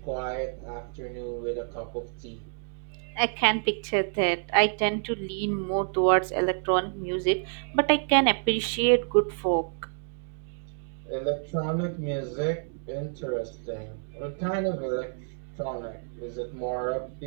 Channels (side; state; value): left; silent; digital silence